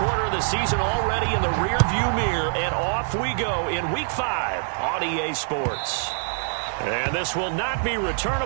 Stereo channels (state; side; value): silent; left; digital silence